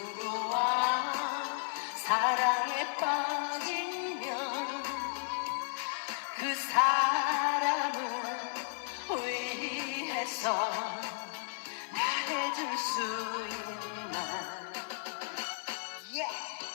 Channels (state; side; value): silent; right; digital silence